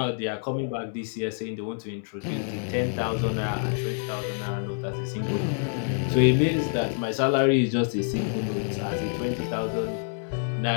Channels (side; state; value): right; silent; digital silence